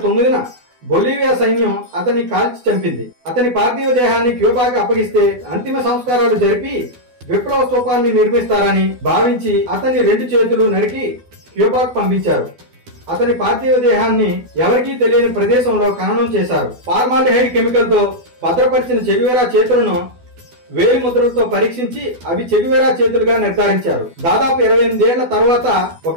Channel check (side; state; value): left; late; 12 ms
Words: 9న బొలీవియా సైన్యం అతన్ని కాల్చి చంపింది. అతని పార్థివ దేహాన్ని క్యూబాకి అప్పగిస్తే అంతిమ సంస్కారాలు జరిపి విప్లవ స్తూపాన్ని నిర్మిస్తారని భావించి అతని 2 చేతులు నరికి క్యూబాకు పంపించారు. అతని పార్థివ దేహాన్ని ఎవరికీ తెలియని ప్రదేశంలో ఖననం చేశారు. ఫార్మాల్డిహైడ్ కెమికల్ తో భద్రపరిచిన చెగువేరా చేతులను వేలి ముద్రలతో పరీక్షించి అవి చెగువేరా చేతులుగా నిర్ధారించారు. దాదాపు 28 ఏళ్ల తర్వాత